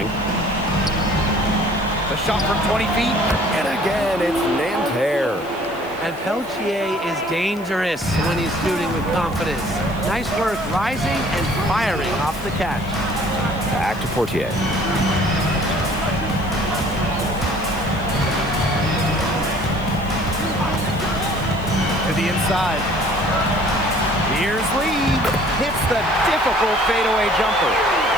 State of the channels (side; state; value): left; noise; hiss, 23 dB below the sound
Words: The shot from 20 feet. And again, it's Nanterre. And Peltier is dangerous when he's shooting with confidence. Nice work rising and firing off the catch. Back to Portier. To the inside. Here's Lee. Hits the difficult fadeaway jumper.